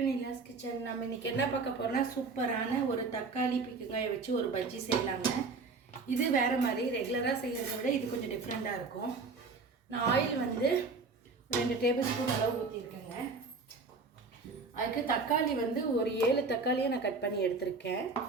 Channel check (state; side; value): quieter; left; 4.2 dB